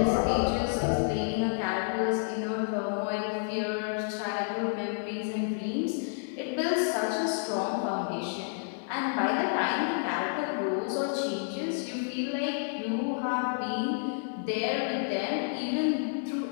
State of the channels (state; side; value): silent; right; digital silence